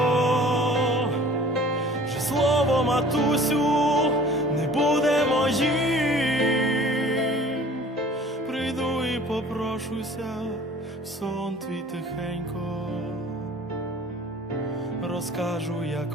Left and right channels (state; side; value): normal; both; correlation 0.48